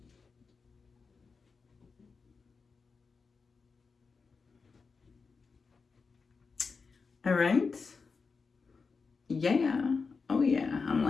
All right. Yeah. Oh yeah, I'm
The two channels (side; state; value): right; quieter; 4.8 dB